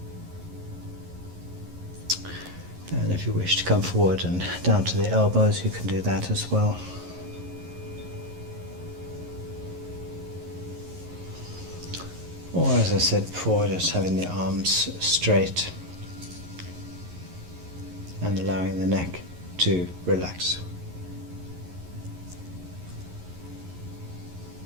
And if you wish to come forward and down to the elbows, you can do that as well. Or, as I said before, just having the arms straight and allowing the neck to relax.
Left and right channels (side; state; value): left; late; 11 ms